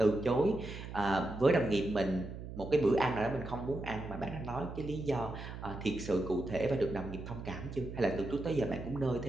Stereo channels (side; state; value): right; noise; hum, 10 dB below the sound